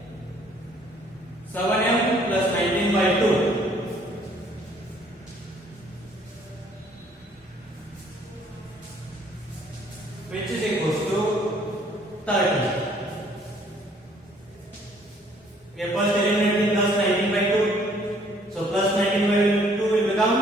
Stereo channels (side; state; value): both; normal; correlation 0.61